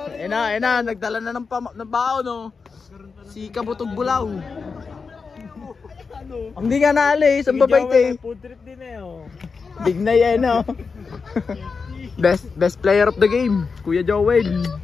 Ayun na, nagdala na ng bao no. Si Kabutog Bulaw. Hindi nga naalis, ang babait eh. Food trip din eh oh. Big na yan no. Best player of the game, Kuya Joel.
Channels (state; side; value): quieter; right; 5.0 dB